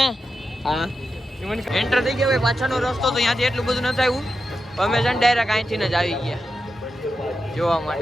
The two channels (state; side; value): normal; both; correlation 0.89